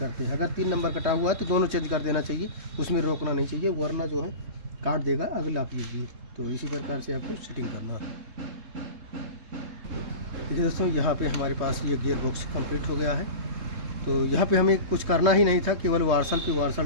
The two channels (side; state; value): left; late; 3.7 ms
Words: हैं। अगर 3 नंबर कटा हुआ है तो दोनों चेंज कर देना चाहिए, उसमें रोकना नहीं चाहिए, वरना जो है काट देगा अगला पीस। तो इसी प्रकार से आपको सेटिंग करना है। देखिए दोस्तों, यहाँ पे हमारे पास ये गियर बॉक्स कंप्लीट हो गया है। तो यहाँ पे हमें कुछ करना ही नहीं था, केवल वार्सल पे